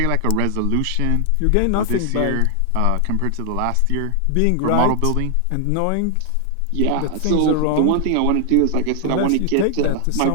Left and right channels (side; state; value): both; different; correlation 0.00